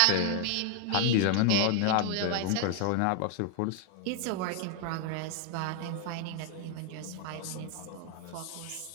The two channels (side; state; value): both; different; correlation 0.00